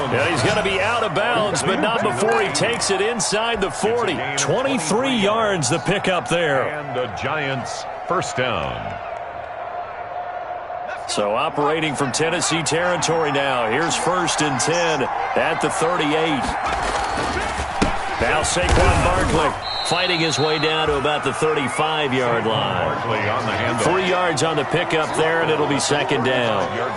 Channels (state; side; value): identical; both; correlation 1.00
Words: he's going to be out of bounds, but not before he takes it inside the 40. 23 yards the pickup there. And the Giants first down. So operating from Tennessee territory now. Here's 1st and 10 at the 38. Now Saquon Barkley fighting his way down to about the 35-yard line. 3 yards on the pickup there, and it'll be 2nd down.